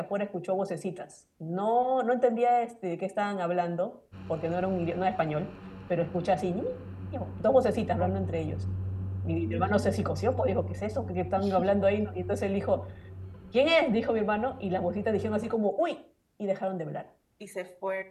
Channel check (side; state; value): both; identical; correlation 1.00